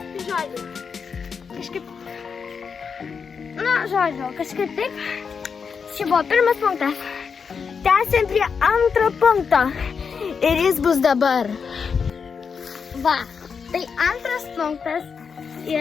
Kažkaip taip. Čia buvo pirmas punktas. Tęsiam prie antro punkto. Ir jis bus dabar. Va, tai antras punktas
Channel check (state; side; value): quieter; right; 6.0 dB